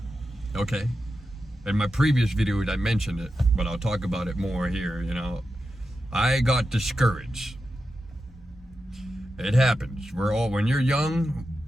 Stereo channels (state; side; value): normal; both; correlation 0.90